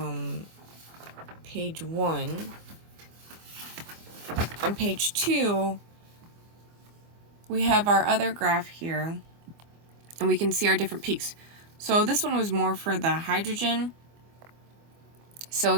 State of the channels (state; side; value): late; left; 24 ms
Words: page 1. On page 2, we have our other graph here, and we can see our different peaks. So this one was more for the hydrogen. So